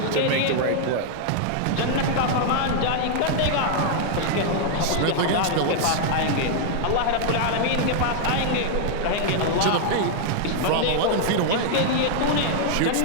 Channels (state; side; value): different; both; correlation -0.01